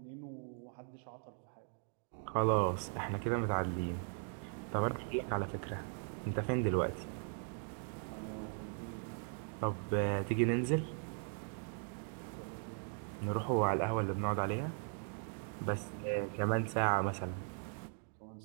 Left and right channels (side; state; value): left; silent; 52 dB below the other